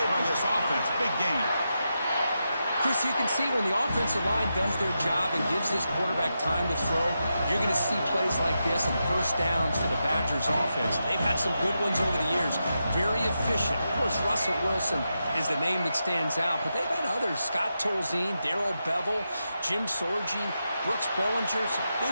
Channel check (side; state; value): both; inverted; correlation -0.87